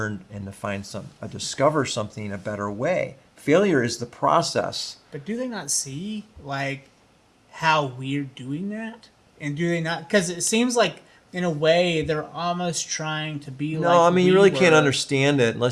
and to find discover something a better way. Failure is the process. But do they not see, like, how we're doing that? And do they not? Because it seems like, in a way, they're almost trying to be like. No, I mean, you really can't were. understand it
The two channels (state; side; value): identical; both; correlation 1.00